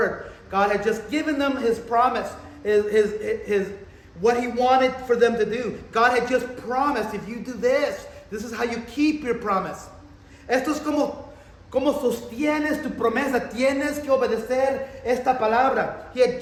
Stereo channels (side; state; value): both; identical; correlation 1.00